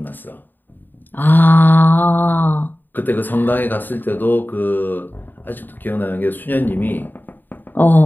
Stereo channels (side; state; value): right; late; 0.091 ms